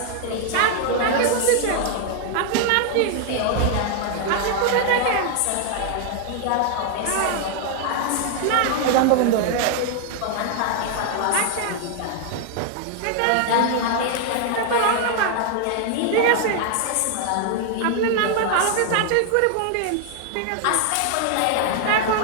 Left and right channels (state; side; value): different; both; correlation 0.00